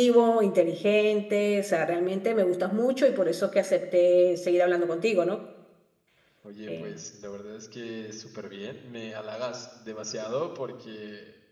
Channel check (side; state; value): both; identical; correlation 1.00